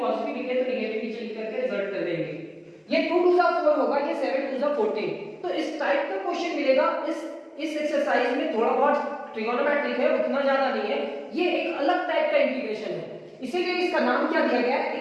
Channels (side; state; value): both; identical; correlation 1.00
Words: लिखे तो निगेटिव नीचे लिख करके रिजल्ट कर देंगे। ये 2 टू द 4 होगा, ये 7 टू द 14। तो इस टाइप का क्वेश्चन मिलेगा। इस एक्सरसाइज में थोड़ा बहुत ट्रिगोनोमेट्रिक है, उतना ज्यादा नहीं है, ये एक अलग टाइप का इंटीग्रेशन है, इसीलिए इसका नाम क्या दिया गया